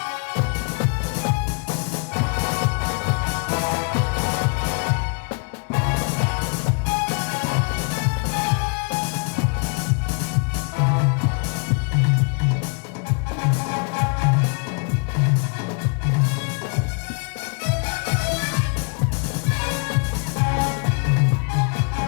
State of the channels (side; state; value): right; quieter; 37.0 dB